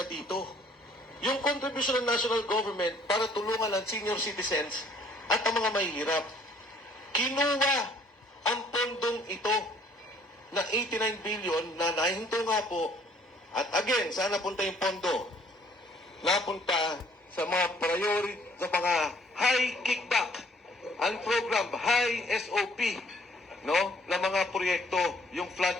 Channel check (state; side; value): normal; both; correlation 0.60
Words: dito. Yung contribution ng national government para tulungan ang senior citizens at ang mga mahihirap. Kinuha ang pondong ito na 89 billion na nahinto nga po. At again, saan napunta yung pondo? Napunta sa mga priority, sa mga high kickback, ang program, high SOP, no, na mga proyekto, yung flood